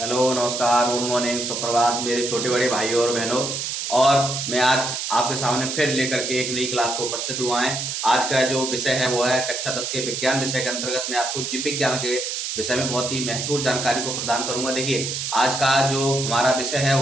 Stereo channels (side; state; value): right; noise; hiss, 3 dB below the sound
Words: नमस्कार, good morning, सुप्रभात मेरे छोटे बड़े भाइयों और बहनों। और मैं आज आपके सामने फिर लेकर के एक नई क्लास को उपस्थित हुआ है। आज का जो विषय है वो है कक्षा 10 के विज्ञान विषय के अंतर्गत मैं आपको जीव विज्ञान के विषय में बहुत ही महत्वपूर्ण जानकारी को प्रदान करूंगा। देखिए, आज का जो हमारा विषय है